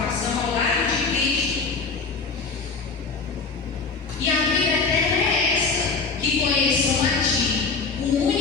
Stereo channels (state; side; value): quieter; right; 4.5 dB